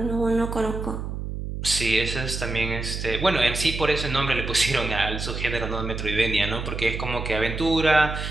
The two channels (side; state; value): right; noise; hum, 5 dB below the sound